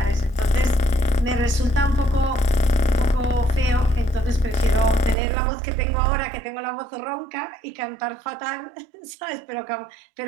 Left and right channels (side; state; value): left; drops out; at 5.2 s